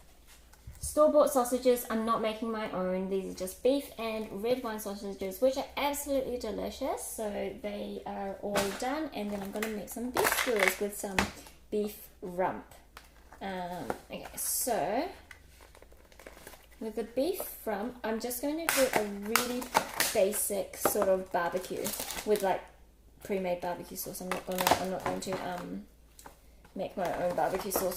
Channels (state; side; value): identical; both; correlation 1.00